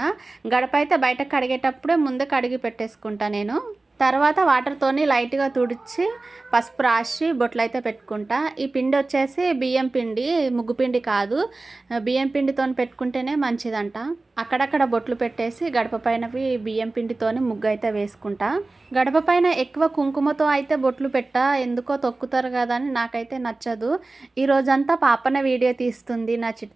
గడప అయితే బయట కడిగేటప్పుడే ముందే కడిగి పెట్టేసుకుంటా నేను. తర్వాత వాటర్తోని లైట్గా తుడిచి పసుపు రాసి బొట్లు అయితే పెట్టుకుంటా. ఈ పిండి వచ్చేసి బియ్యం పిండి, ముగ్గు పిండి కాదు. బియ్యం పిండితో పెట్టుకుంటేనే మంచిదంట. అక్కడక్కడ బొట్లు పెట్టేసి గడప పైనవి బియ్యం పిండితోని ముగ్గు అయితే వేసుకుంటా. గడప పైన ఎక్కువ కుంకుమతో అయితే బొట్లు పెట్టా, ఎందుకో తొక్కుతారు కదా అని నాకైతే నచ్చదు. ఈ రోజంతా పాపన వీడియో తీస్తుంది నా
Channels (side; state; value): left; quieter; 3.3 dB